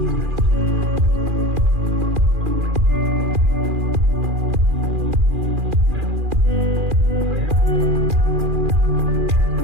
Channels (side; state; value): left; late; 2.4 ms